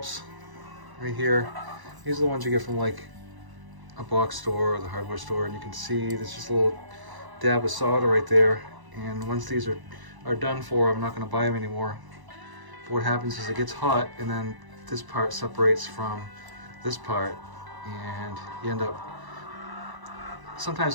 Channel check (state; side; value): late; left; 1.0 ms